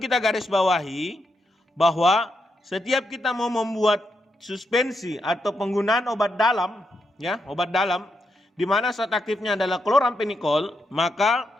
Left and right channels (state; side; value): normal; both; correlation 0.82